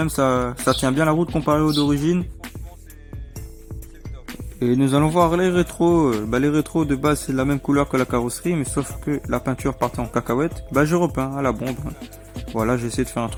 Ça tient bien la route comparé aux d'origine. Et nous allons voir les rétros. Les rétros de base c'est la même couleur que la carrosserie, mais sauf que la peinture partait en cacahuète. Je repeins à la bombe. Voilà, j'ai essayé de faire un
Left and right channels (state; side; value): identical; both; correlation 1.00